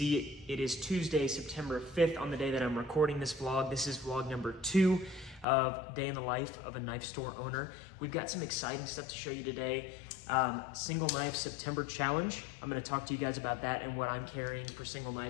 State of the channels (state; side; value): drops out; right; at 5.5 s